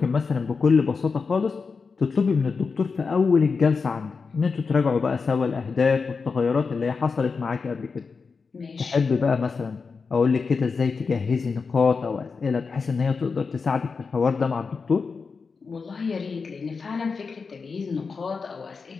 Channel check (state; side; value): quieter; right; 4.9 dB